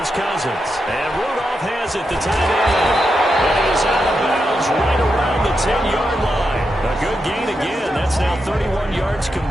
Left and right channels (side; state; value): both; normal; correlation 0.86